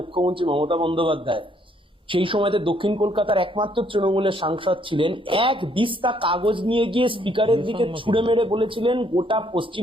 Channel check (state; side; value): normal; both; correlation 0.67